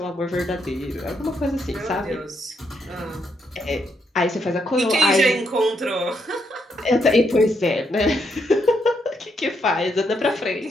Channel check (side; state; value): both; normal; correlation 0.77